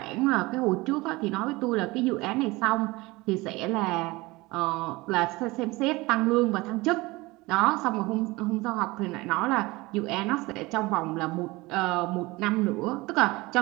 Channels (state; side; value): quieter; left; 22.0 dB